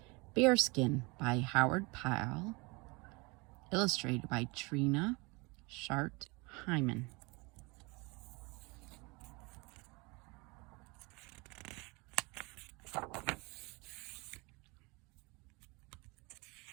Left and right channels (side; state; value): left; quieter; 27.0 dB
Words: Bearskin by Pyle, illustrated by Trina, Hyman.